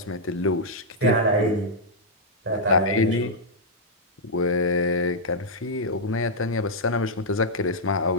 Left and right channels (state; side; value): normal; both; correlation -0.06